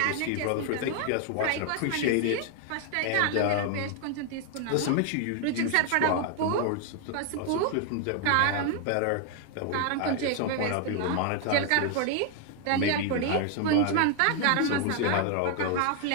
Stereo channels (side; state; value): both; different; correlation 0.00